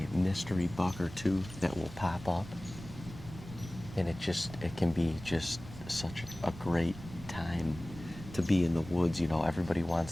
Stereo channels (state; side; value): noise; right; rumble, 14 dB below the sound